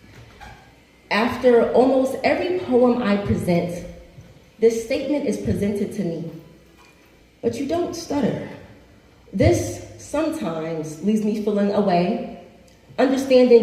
After almost every poem I present, this statement is presented to me. But you don't stutter. This sometimes leaves me feeling away, understanding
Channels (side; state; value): both; identical; correlation 1.00